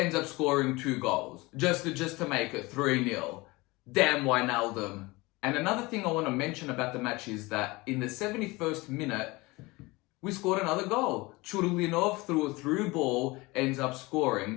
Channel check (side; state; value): right; quieter; 22.8 dB